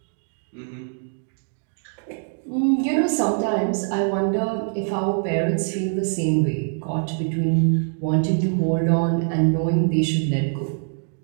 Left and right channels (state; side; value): silent; left; 62 dB below the other